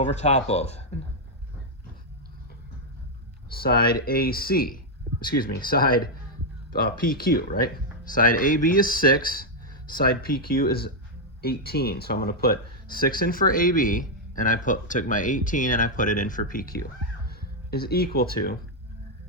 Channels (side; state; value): both; normal; correlation -0.01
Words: top of side AC, excuse me, side PQ, right? Side AB is 6, side PQ is 18. So I'm going to put 6 in for AB, and I took my 18 and I put it in for PQ, is equal to